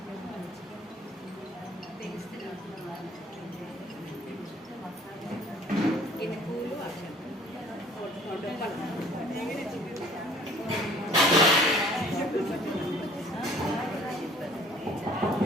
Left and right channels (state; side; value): normal; both; correlation 0.54